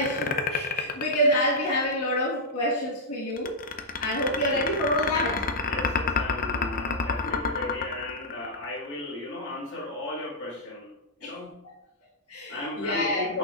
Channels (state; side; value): normal; both; correlation -0.09